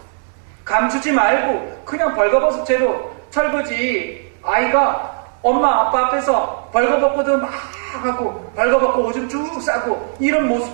감추지 말고 그냥 벌거벗은 채로 철부지 아이가 엄마 아빠 앞에서 벌거벗고도 막 하고 벌거벗고 오줌 쭉 싸고 이런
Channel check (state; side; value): silent; left; digital silence